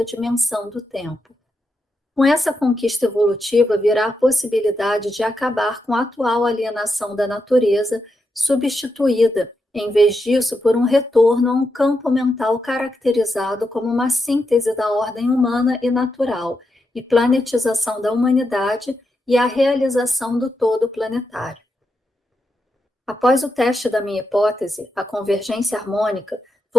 dimensão do tempo. Com essa conquista evolutiva virá a possibilidade de acabar com a atual alienação da natureza, substituída, em vez disso, por um retorno a um campo mental caracterizado como uma síntese da ordem humana e natural, e planetização da humanidade e a realização do todo planetário. Após o teste da minha hipótese, a convergência harmônica,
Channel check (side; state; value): both; normal; correlation 0.85